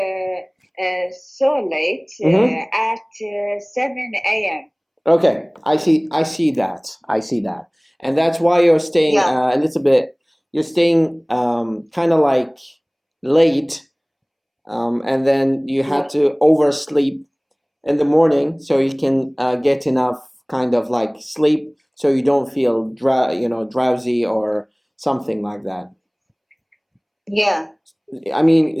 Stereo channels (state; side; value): identical; both; correlation 1.00